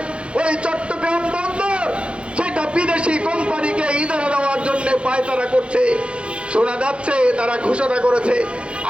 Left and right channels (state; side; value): late; left; 0.058 ms